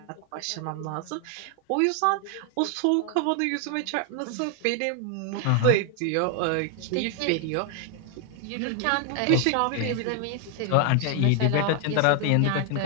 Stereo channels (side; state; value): both; different; correlation 0.00